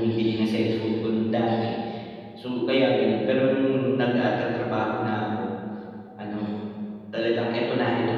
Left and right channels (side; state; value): both; identical; correlation 1.00